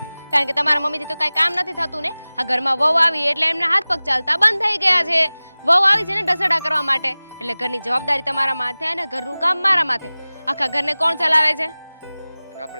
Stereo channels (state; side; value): inverted; both; correlation -0.99